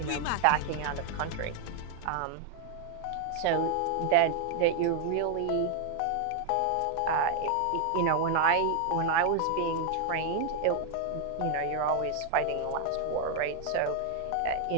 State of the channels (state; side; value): different; both; correlation 0.00